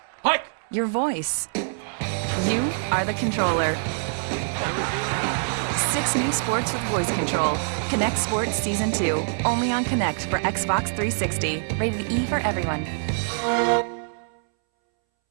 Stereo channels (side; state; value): left; silent; 62 dB below the other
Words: hike. Your voice. You are the controller. 6 new sports with voice control. Connect Sports Season 2. Only on Connect for Xbox 360. Rated E for everyone.